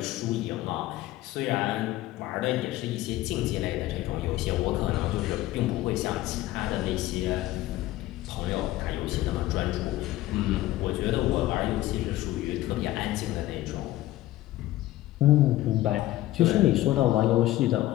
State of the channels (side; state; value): right; quieter; 15.8 dB